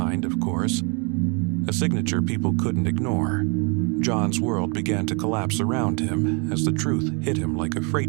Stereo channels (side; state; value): left; quieter; 33.7 dB